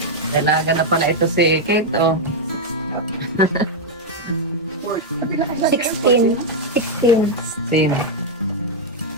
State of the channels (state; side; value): normal; both; correlation -0.02